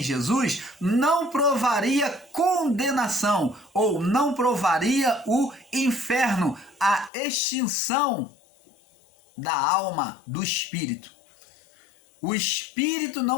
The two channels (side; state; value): right; drops out; at 7.1 s